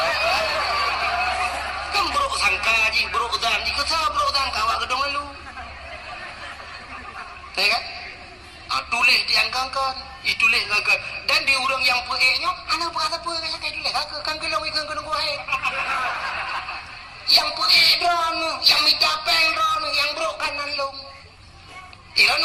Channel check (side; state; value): both; identical; correlation 1.00